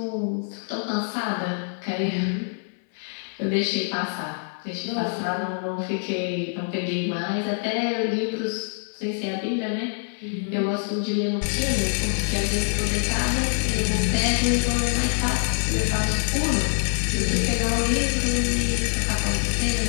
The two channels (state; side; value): silent; right; 57 dB below the other